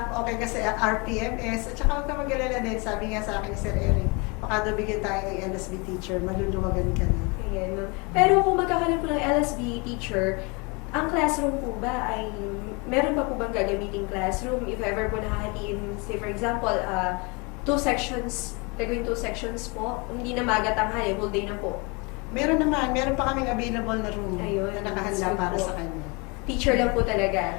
okay kasi RPMS, at saka huwag ka mag-alala din, sabi nga sa akin ni Sir Eric, baka daw bigyan tayo ng LSB teacher, maluluwagan ka na. Ayan, ma'am. Pero kung magkakaroon po ng LSB teacher, ang classroom po ba ay, meron pa po bang gagamiting classroom? If ever po nakahatiin, say for example, 2 sections, gagawin 2 sections po, hindi na magatanghali, whole day na po. Meron pa kaming available na room Ayun, na nakahanda so para po. sa kanya. Teacher lang po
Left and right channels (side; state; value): right; quieter; 29.6 dB